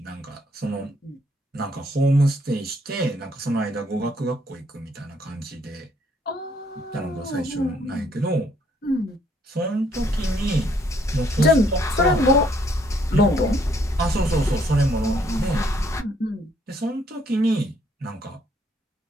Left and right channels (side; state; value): both; normal; correlation 0.68